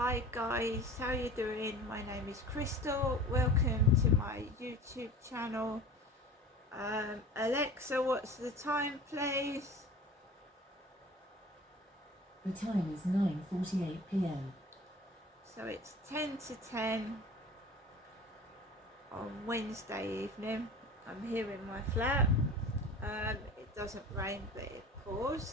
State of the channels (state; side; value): normal; both; correlation 0.40